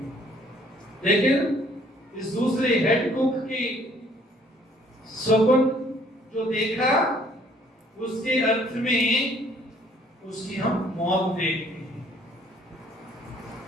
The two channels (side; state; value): both; normal; correlation 0.60